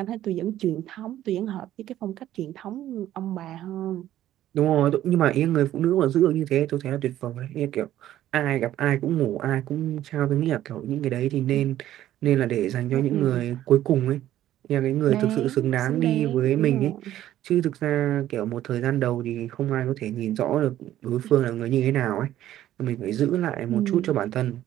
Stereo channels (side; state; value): left; quieter; 12.9 dB